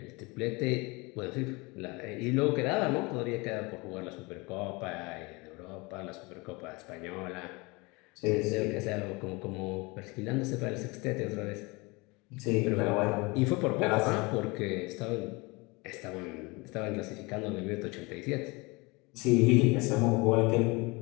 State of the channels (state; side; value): quieter; right; 25.9 dB